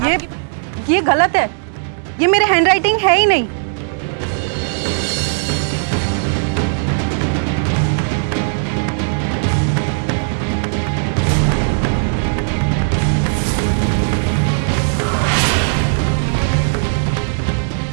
ये गलत है, ये मेरे हैंडराइटिंग है ही नहीं।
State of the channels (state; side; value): silent; left; 63 dB below the other